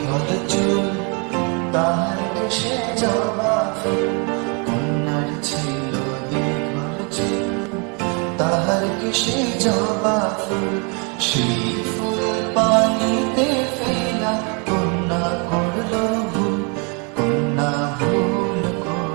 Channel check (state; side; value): quieter; left; 34.7 dB